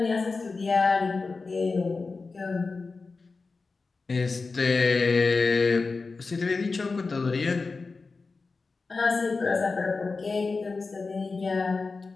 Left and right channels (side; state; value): right; quieter; 4.1 dB